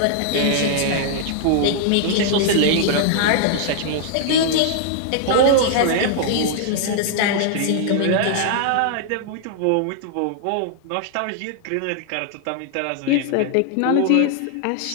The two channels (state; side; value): different; both; correlation -0.01